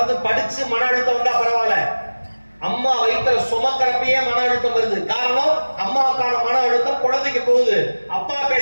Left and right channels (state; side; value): inverted; both; correlation -1.00